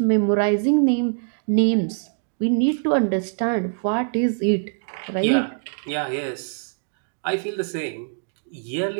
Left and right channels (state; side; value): silent; left; digital silence